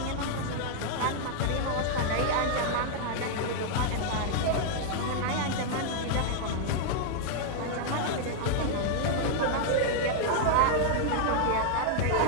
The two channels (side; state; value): both; different; correlation 0.00